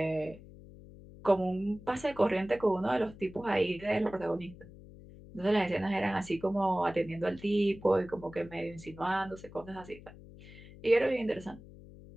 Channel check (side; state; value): left; noise; hum, 18 dB below the sound